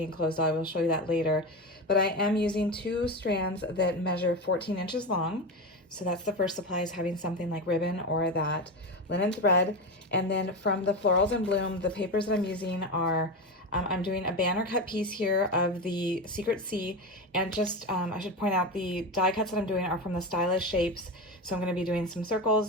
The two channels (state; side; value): normal; both; correlation 0.20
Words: closed. I will show you that later. But I am using 2 strands that measure 14 inches long. So that's the first supply, is having something like ribbon or that linen thread. And then from the Florals in Bloom, the papers that I'm using are, I'm doing a banner cut piece here of the Secret Sea. And just, I should point out, the die cuts that I'm doing are from the Stylish Shapes. So I'm going to be doing some